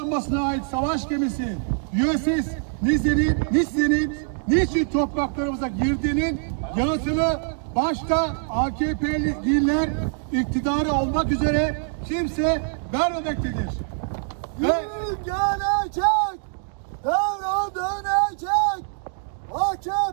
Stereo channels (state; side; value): silent; left; 63 dB below the other